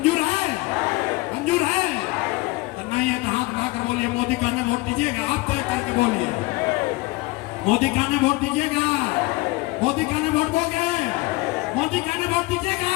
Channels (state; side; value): quieter; right; 22.6 dB